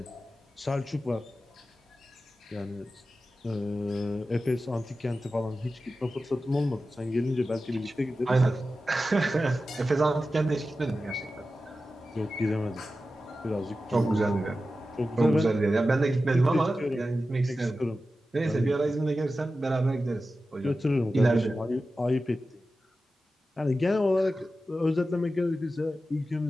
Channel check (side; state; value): both; normal; correlation 0.93